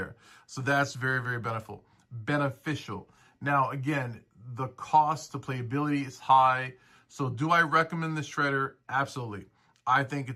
So that's very beneficial. Now, again, the cost to playability is high. So do I recommend the Shredder? Absolutely. I think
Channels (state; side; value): identical; both; correlation 1.00